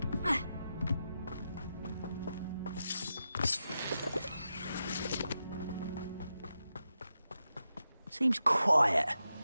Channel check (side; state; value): both; inverted; correlation -0.88